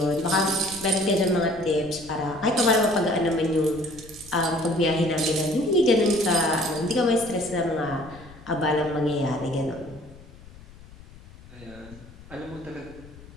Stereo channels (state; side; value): noise; left; rumble, 20 dB below the sound